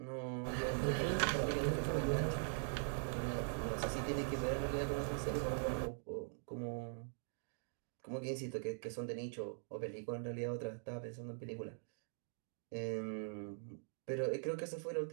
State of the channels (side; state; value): left; silent; digital silence